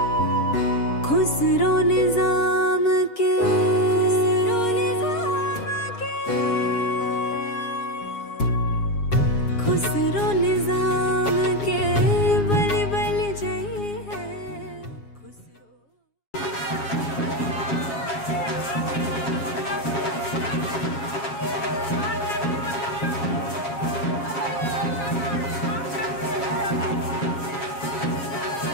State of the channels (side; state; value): right; late; 7.3 ms